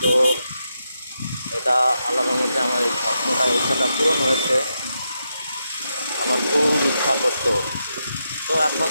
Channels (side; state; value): both; inverted; correlation -0.85